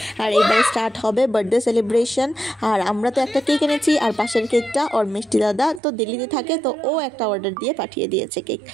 আর এবারে স্টার্ট হবে বার্থডে সেলিব্রেশন। আর আমরা তো একটা কেক এনেছি, আর পাশের কেকটা ওর মিষ্টি দাদা তো দিল্লিতে থাকে, তো ও একটা অর্ডার দিয়ে পাঠিয়ে দিয়েছে কেক।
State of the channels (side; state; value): left; drops out; at 5.8 s